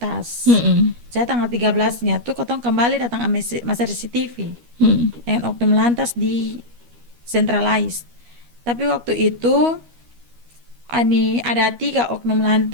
Saya tanggal 13-nya tuh ketong kembali datang masa CCTV dengan oknum lantas di centralized. Tapi waktu itu ada 3 oknum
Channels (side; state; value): left; late; 13 ms